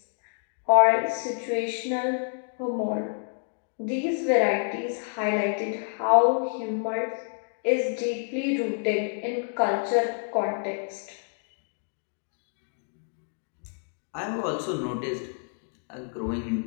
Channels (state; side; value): silent; right; 59 dB below the other